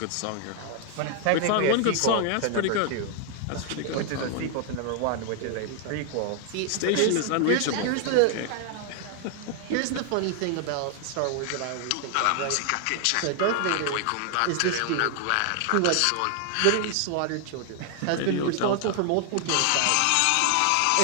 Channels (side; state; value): both; different; correlation 0.00